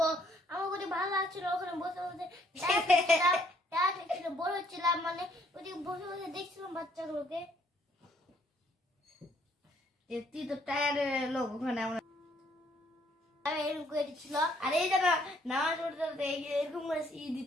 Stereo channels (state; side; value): normal; both; correlation 0.66